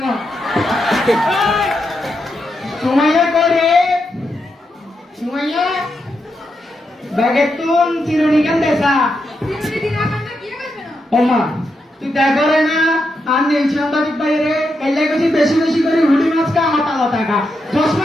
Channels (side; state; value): both; normal; correlation 0.84